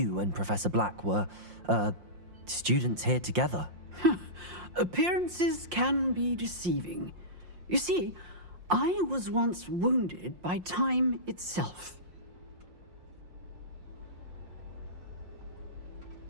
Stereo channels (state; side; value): late; left; 5.7 ms